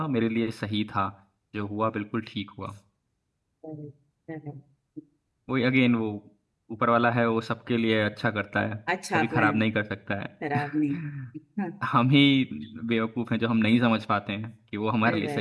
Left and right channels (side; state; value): both; identical; correlation 1.00